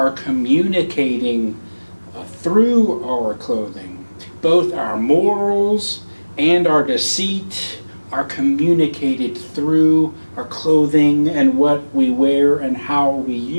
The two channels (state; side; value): inverted; both; correlation -1.00